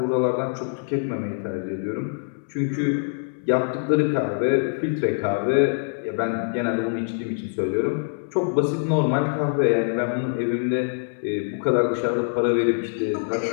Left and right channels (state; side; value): silent; right; 62 dB below the other